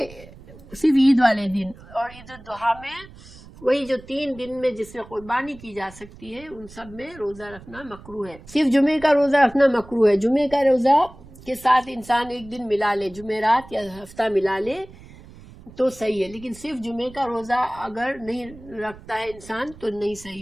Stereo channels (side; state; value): right; noise; rumble, 20 dB below the sound